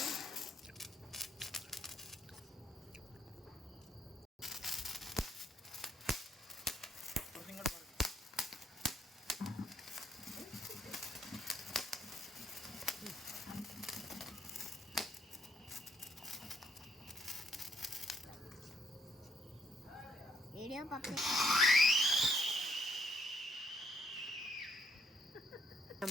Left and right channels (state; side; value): normal; both; correlation 0.72